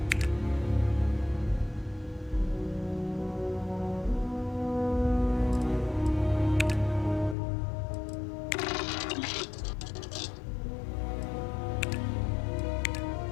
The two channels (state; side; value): drops out; right; at 7.4 s